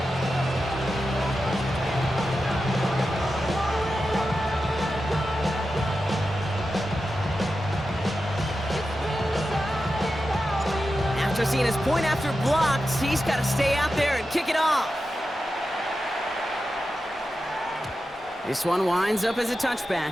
After seeing his point after blocked, he's got to stay out there and kick it off. This one winds up as a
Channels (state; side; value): normal; both; correlation 0.91